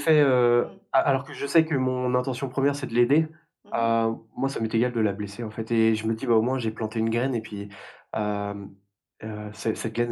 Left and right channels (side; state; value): both; identical; correlation 1.00